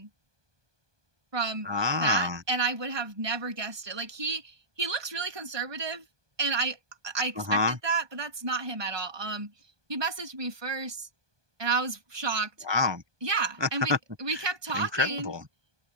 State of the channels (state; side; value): late; left; 1.2 ms